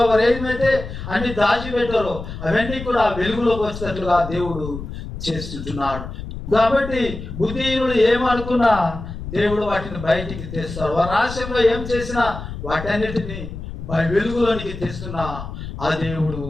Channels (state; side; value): noise; left; rumble, 9 dB below the sound